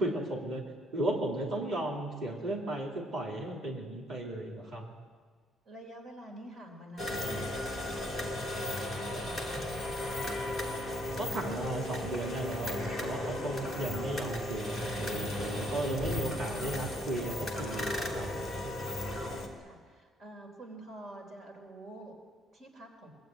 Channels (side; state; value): both; normal; correlation 0.67